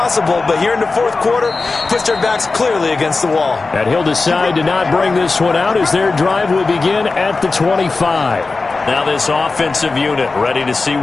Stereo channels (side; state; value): right; quieter; 3.9 dB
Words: But here in the 4th quarter, puts their backs clearly against the wall. And he'll decide to not bring this one out as their drive will begin at the 25. Now this offensive unit ready to see